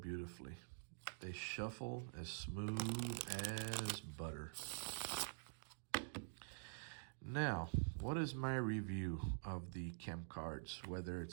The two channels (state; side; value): silent; left; digital silence